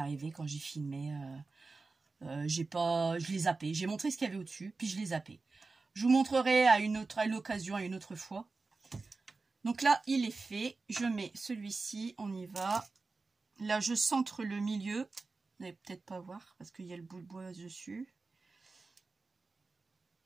quand j'ai filmé. Je l'ai zappé. J'ai montré ce qu'il y avait au-dessus, puis je l'ai zappé. Je vous montrerai à l'occasion, à une autre fois. Donc là, il est fait. Je mets celui-ci. On y va. Là, je centre le milieu. Vous n'allez peut-être pas voir parce qu'il y a le bout de bois dessus.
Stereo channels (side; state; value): left; quieter; 3.9 dB